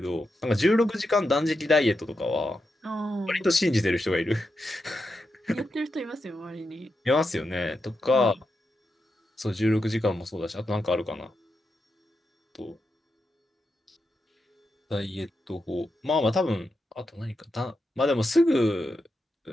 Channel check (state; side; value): normal; both; correlation 0.87